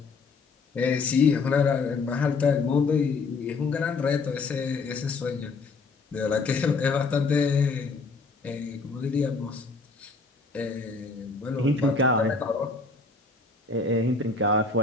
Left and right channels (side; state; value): right; quieter; 4.1 dB